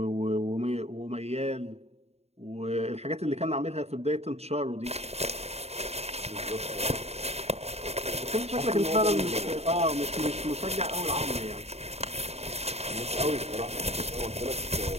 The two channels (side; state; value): left; late; 0.30 ms